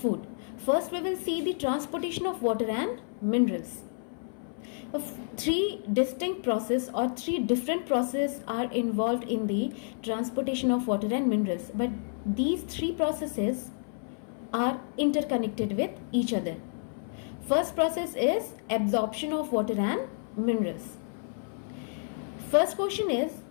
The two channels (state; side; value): silent; right; 58 dB below the other